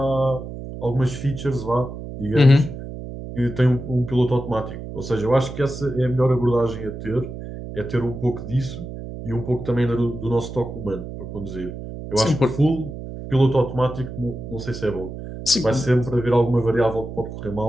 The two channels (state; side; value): noise; right; hum, 10 dB below the sound